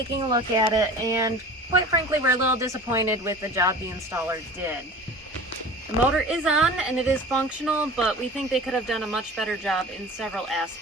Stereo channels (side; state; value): both; normal; correlation 0.39